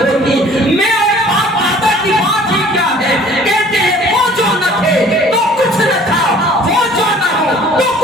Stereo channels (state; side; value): normal; both; correlation 0.52